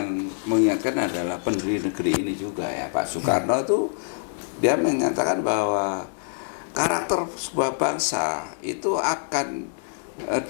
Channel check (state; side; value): silent; right; digital silence